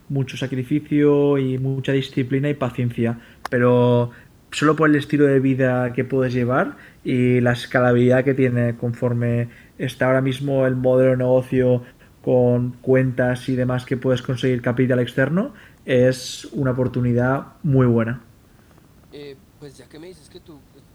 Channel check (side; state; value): both; identical; correlation 1.00